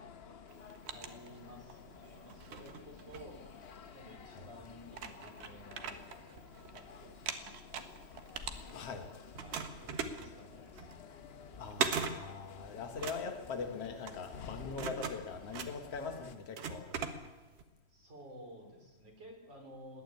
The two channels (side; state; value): left; late; 3.1 ms